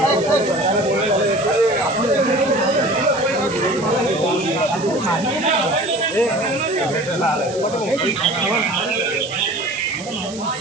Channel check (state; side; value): noise; right; hiss, 15 dB below the sound